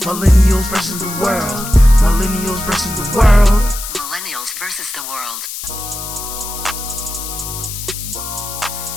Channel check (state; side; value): noise; left; hiss, 8 dB below the sound